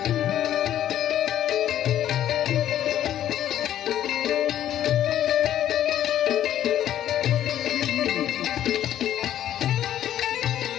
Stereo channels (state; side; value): quieter; right; 11.6 dB